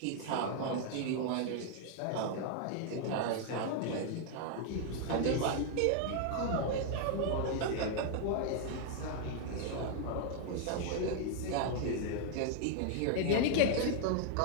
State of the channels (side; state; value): both; different; correlation 0.00